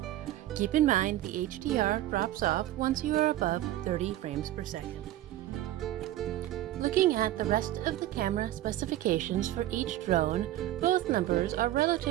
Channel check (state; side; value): quieter; left; 14.2 dB